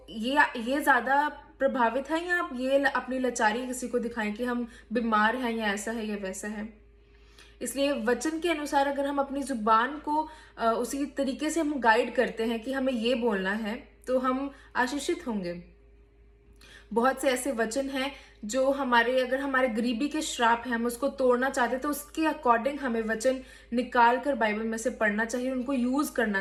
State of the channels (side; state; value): both; identical; correlation 1.00